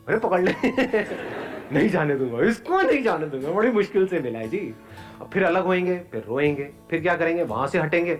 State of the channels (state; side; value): identical; both; correlation 1.00